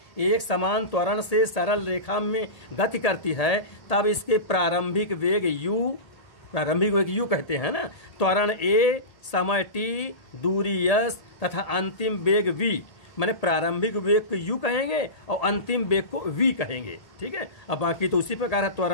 एक समान त्वरण से सरल रेखा में गति करती है, तब इसके प्रारंभिक वेग u कहते हैं ना। त्वरण a, समय t, दूरी s तथा अंतिम वेग v, मैंने प्रारंभिक वेग को u कहेंगे और अंतिम वेग को v कहेंगे, ठीक है। अब बाकी तो उसी प्रकार है,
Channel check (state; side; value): late; right; 1.8 ms